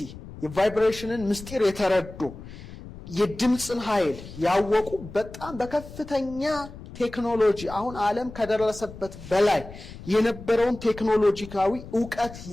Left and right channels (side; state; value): left; noise; rumble, 15 dB below the sound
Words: የቫይብሬሽንን ምስጢር የተረዱ የድምጽን ኃይል ያወቁ በጣም በከፍተኛ ቴክኖሎጂ አሁን ዓለም ከደረሰበት በላይ የነበረውን ቴክኖሎጂካዊ ዕውቀት